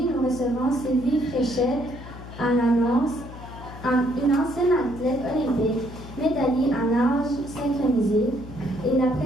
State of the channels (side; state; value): left; noise; hum, 14 dB below the sound